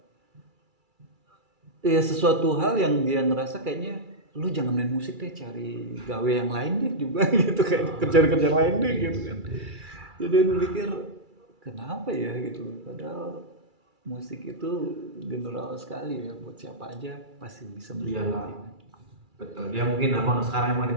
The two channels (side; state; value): left; late; 2.3 ms